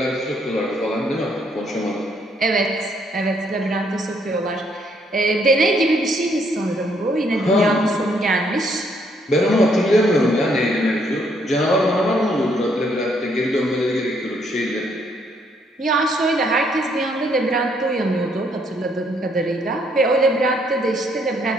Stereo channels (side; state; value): both; normal; correlation 0.70